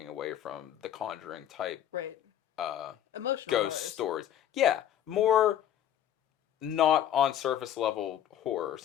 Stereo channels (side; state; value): right; quieter; 10.8 dB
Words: away from the Conjuring type, right? Emotional ghost stories. Yeah, more not on surface level horror,